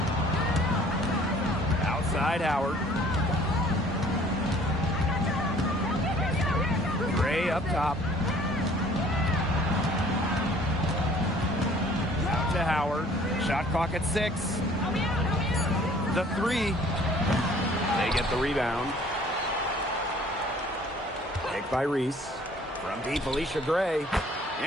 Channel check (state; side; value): normal; both; correlation 0.55